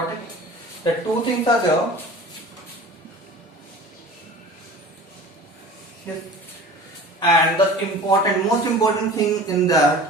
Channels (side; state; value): both; normal; correlation 0.40